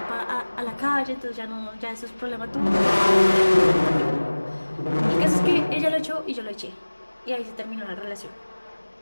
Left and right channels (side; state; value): both; inverted; correlation -1.00